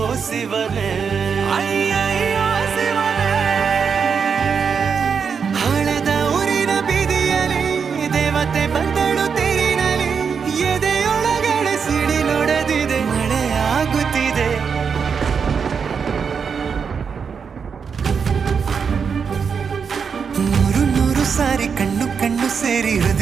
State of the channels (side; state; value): left; quieter; 6.2 dB